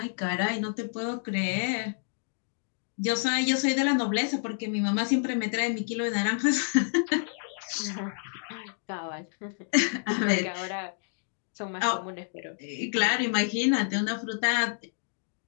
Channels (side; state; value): right; silent; digital silence